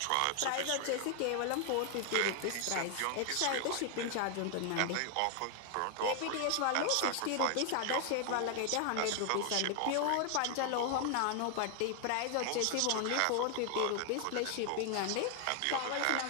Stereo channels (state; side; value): different; both; correlation 0.00